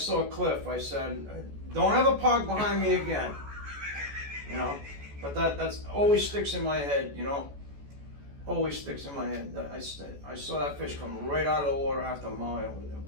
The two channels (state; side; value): late; left; 14 ms